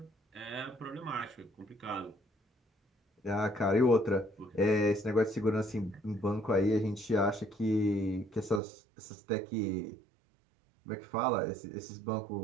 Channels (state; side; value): drops out; left; at 8.6 s